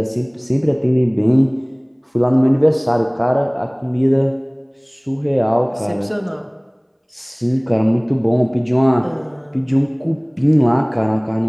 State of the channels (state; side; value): identical; both; correlation 1.00